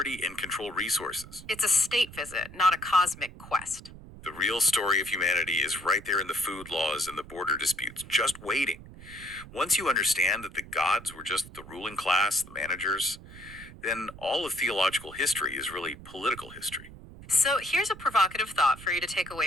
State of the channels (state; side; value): noise; right; rumble, 17 dB below the sound